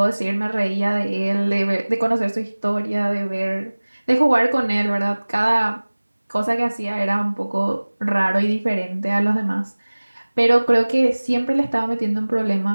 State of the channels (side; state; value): both; inverted; correlation -1.00